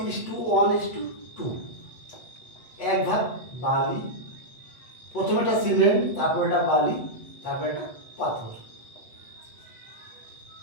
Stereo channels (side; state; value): right; late; 8.1 ms